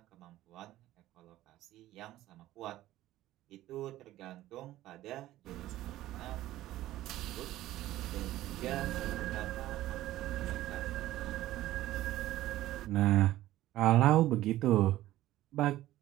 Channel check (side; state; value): left; quieter; 15.0 dB